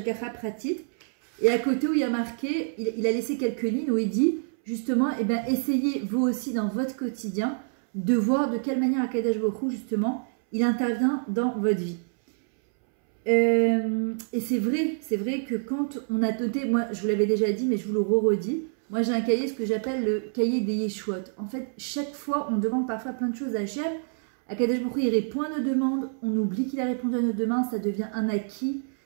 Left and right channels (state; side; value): silent; left; 60 dB below the other